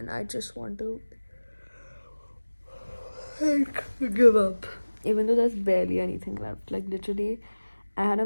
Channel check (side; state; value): both; inverted; correlation -1.00